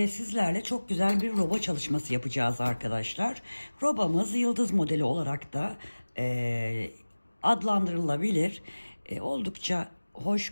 sizlerle çok güzel bir roba çalışması yapacağız arkadaşlar. Robamız yıldız modeli olarak da adlandırılabilir. Oldukça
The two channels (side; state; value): both; inverted; correlation -1.00